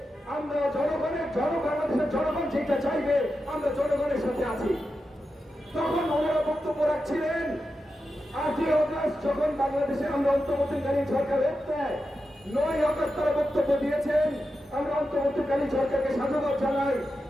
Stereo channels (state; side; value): normal; both; correlation 0.90